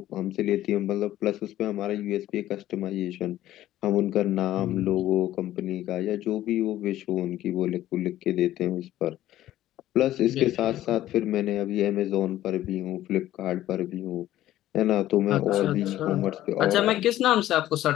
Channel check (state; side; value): quieter; right; 13.8 dB